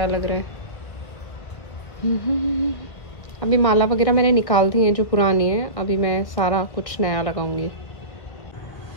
लग रहा है। अभी माला वगैरह मैंने निकाल दी है जो पुरानी है, अभी मैं सारा कुछ नया लगाऊंगी।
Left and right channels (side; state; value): right; late; 1.4 ms